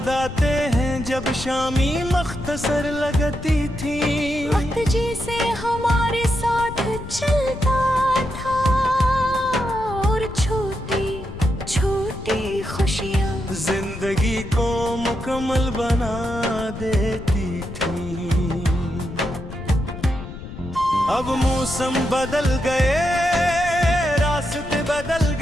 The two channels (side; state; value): left; noise; rumble, 11 dB below the sound